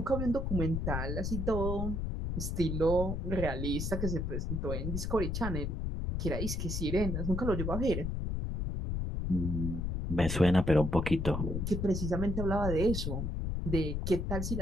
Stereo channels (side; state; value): left; noise; rumble, 2 dB below the sound